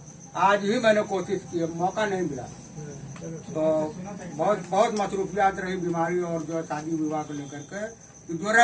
आज ही मैंने कोशिश की, मौका नहीं मिला। तो बहुत मसरूफियात रही, बीमारी और जो शादी विवाह को लेकर के। तो जो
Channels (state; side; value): identical; both; correlation 1.00